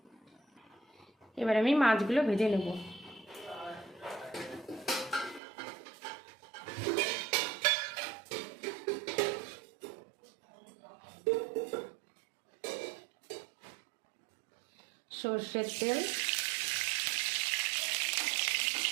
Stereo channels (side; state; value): left; drops out; at 5.4 s